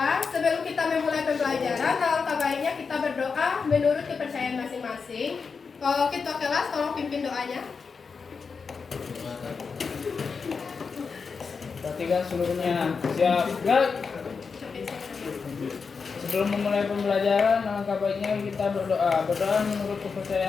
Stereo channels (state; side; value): quieter; right; 5.2 dB